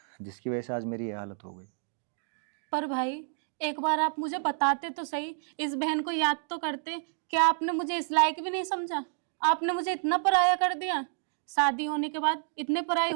जिसकी वजह से आज मेरी ये हालत हो गई। पर भाई एक बार आप मुझे बताते तो सही, इस बहन को याद तो करते। क्या आपने मुझे इस लायक भी नहीं समझा? आपने मुझे इतना पराया कर दिया। शादी होने के बाद इतने पराई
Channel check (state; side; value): silent; left; digital silence